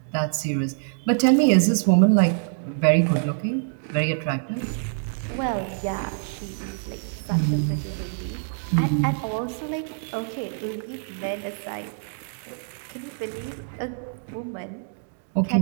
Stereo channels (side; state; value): left; silent; digital silence